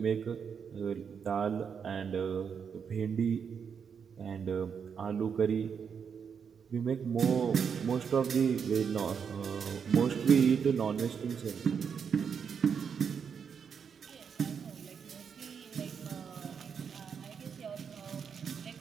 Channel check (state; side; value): quieter; left; 6.8 dB